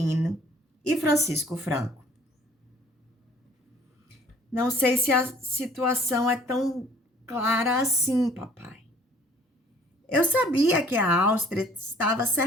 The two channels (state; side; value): normal; both; correlation 0.55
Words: e Francisco Franco. Não sei se a situação é tão clara assim, papai. Eu sabia que a Áustria estava